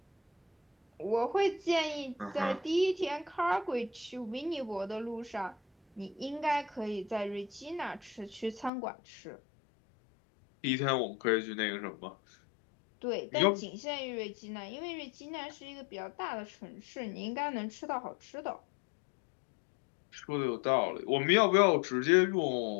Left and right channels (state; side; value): drops out; right; at 8.7 s